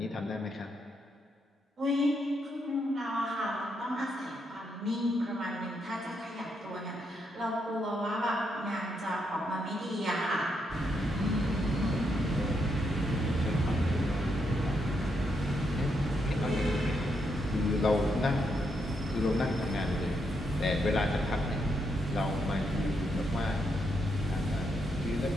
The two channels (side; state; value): both; normal; correlation 0.79